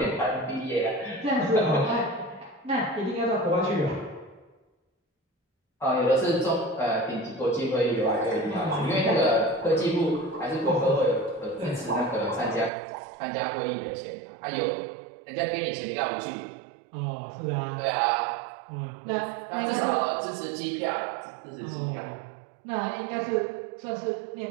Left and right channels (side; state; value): left; drops out; at 12.7 s